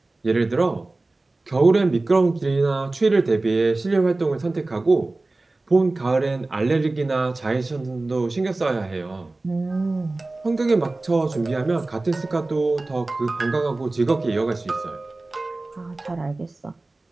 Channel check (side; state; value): left; quieter; 3.1 dB